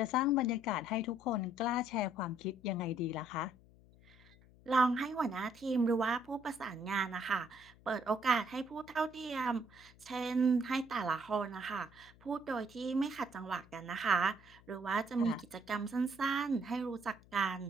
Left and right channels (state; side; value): noise; left; hum, 25 dB below the sound